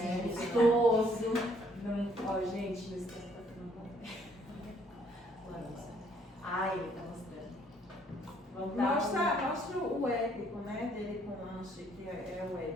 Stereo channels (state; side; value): normal; both; correlation 0.65